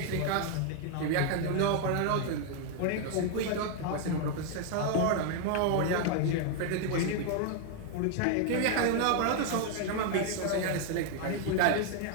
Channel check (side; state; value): both; different; correlation 0.00